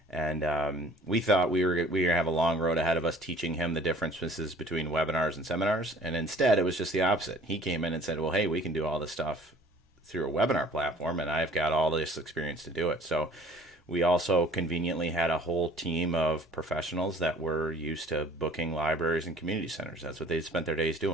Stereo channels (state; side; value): normal; both; correlation 0.52